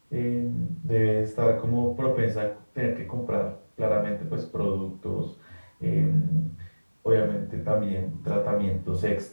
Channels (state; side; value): inverted; both; correlation -1.00